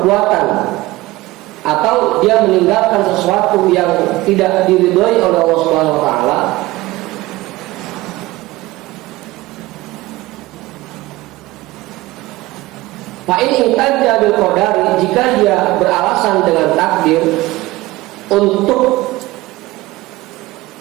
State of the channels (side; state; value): left; quieter; 19.2 dB